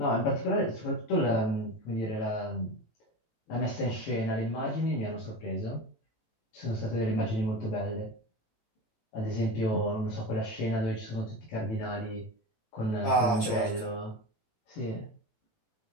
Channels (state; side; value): late; right; 18 ms